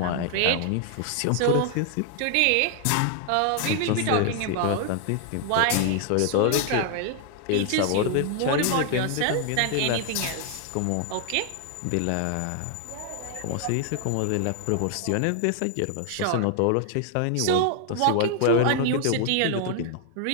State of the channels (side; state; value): both; different; correlation 0.00